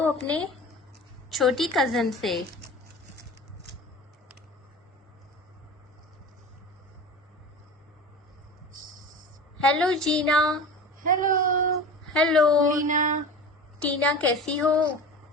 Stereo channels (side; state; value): both; normal; correlation 0.34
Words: अपने छोटी कजन से। हेलो जीना। हेलो हेलो टीना। टीना, कैसी हो?